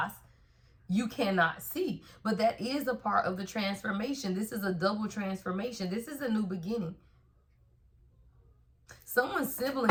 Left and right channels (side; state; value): both; identical; correlation 1.00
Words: you cannot see. But that is a part of the transformation. This is a double transformation. This is a new beginning. Someone's